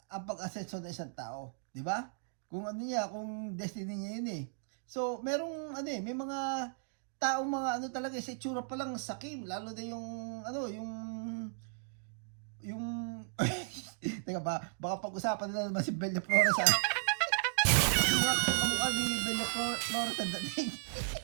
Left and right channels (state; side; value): silent; left; digital silence